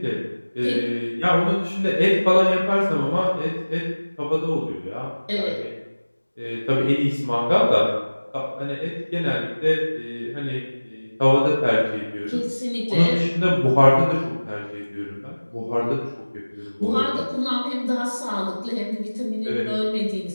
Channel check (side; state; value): both; inverted; correlation -1.00